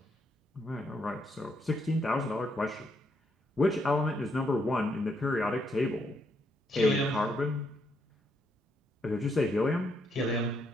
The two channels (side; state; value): both; normal; correlation 0.76